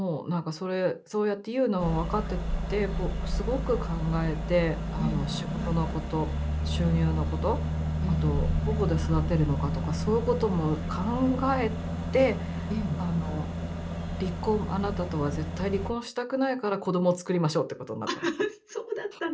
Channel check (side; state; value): both; identical; correlation 1.00